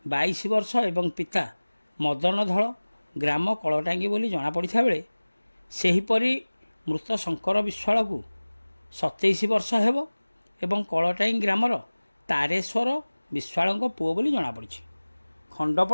22 ବର୍ଷ ଏବଂ ପିତା ମଦନ ଧଳ ଗ୍ରାମ କଳଟାଙ୍ଗି ବୋଲି ଜଣାପଡ଼ିଥିବା ବେଳେ ସେହିପରି ମୃତ ଶଙ୍କର ବିଶ୍ୱାଳକୁ 27 ବର୍ଷ ହେବ ଏବଂ କଳଟାଙ୍ଗି ଗ୍ରାମର ତାରେଶ୍ୱର ବିଶ୍ୱାଳଙ୍କ ପୁଅ ବୋଲି ଜଣାପଡ଼ିଛି।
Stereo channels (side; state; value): both; inverted; correlation -1.00